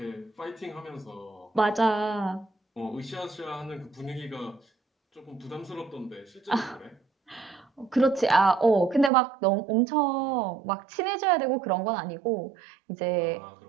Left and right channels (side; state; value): left; drops out; at 9.1 s